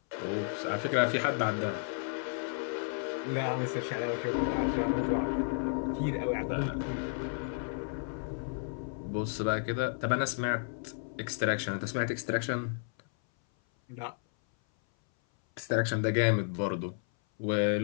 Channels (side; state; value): right; silent; 56 dB below the other